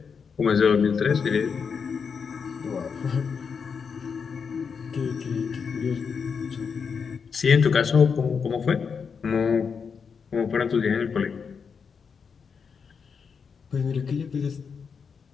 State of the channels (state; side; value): quieter; right; 6.0 dB